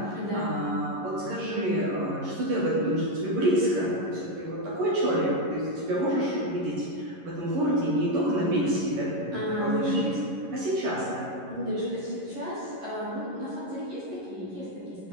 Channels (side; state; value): left; late; 11 ms